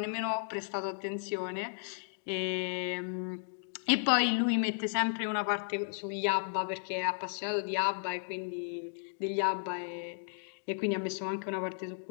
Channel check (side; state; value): right; silent; digital silence